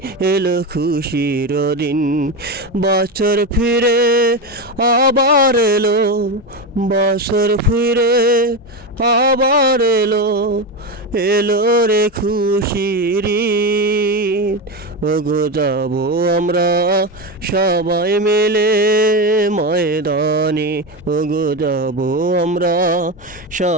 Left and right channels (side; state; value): both; normal; correlation 0.15